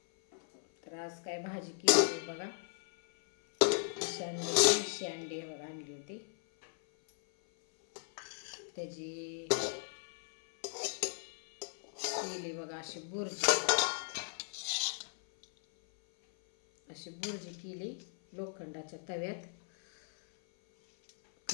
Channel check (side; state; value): right; silent; 53 dB below the other